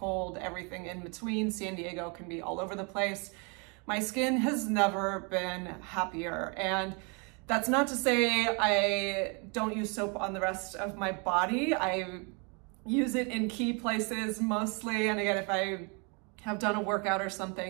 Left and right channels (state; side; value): quieter; left; 33.6 dB